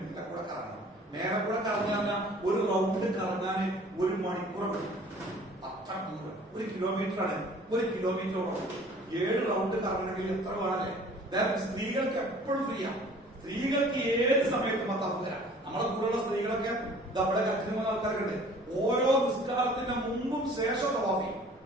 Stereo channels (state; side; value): normal; both; correlation 0.51